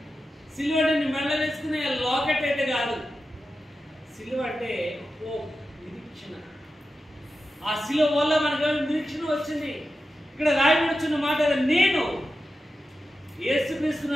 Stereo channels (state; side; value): normal; both; correlation 0.91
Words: సిలువ అంటే నీ మెడలో వేసుకునే లాకెట్ అయితే కాదు. సిలువ అంటే హోప్, నిరీక్షణ. ఆ సిలువ వల్ల మనకు నిరీక్షణ వచ్చింది. ఇక్కడ రాయబడుచున్న మాట, నేను యేసుక్రీస్తును